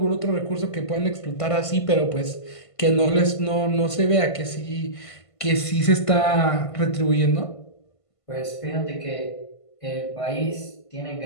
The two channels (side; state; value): right; late; 1.5 ms